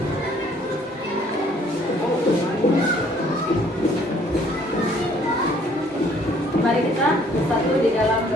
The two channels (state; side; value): normal; both; correlation 0.60